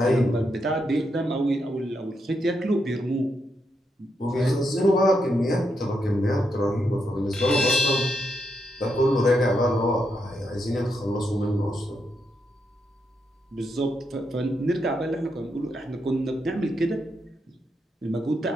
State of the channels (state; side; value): normal; both; correlation 0.81